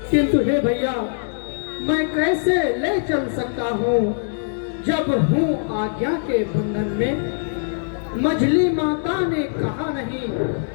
किंतु हे भैया, मैं कैसे ले चल सकता हूँ जब हूँ आज्ञा के बंधन में। मझली माता ने कहा नहीं,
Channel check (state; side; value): silent; right; 64 dB below the other